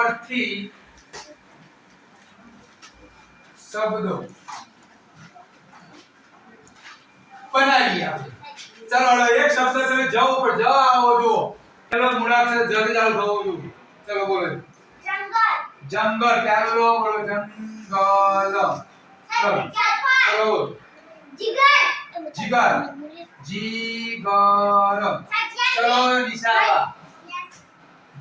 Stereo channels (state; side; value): identical; both; correlation 1.00